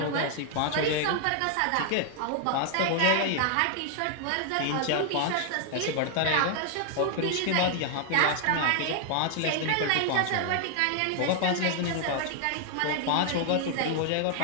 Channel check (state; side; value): different; both; correlation 0.00